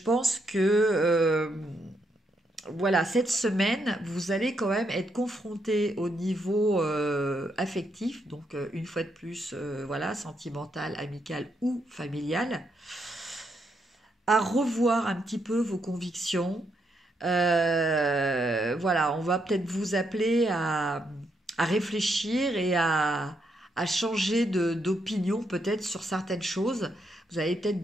pense que voilà, cette semaine, vous allez quand même être confronté au niveau affectif, donc une fois de plus, voilà, sentimental, amical ou familial, à revoir un petit peu vos convictions. Voilà, on va peut-être vous appeler à réfléchir et à changer d'opinion peut-être sur certaines choses. Vous avez peut-être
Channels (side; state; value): both; normal; correlation 0.78